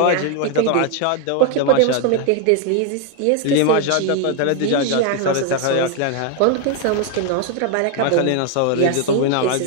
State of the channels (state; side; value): different; both; correlation 0.01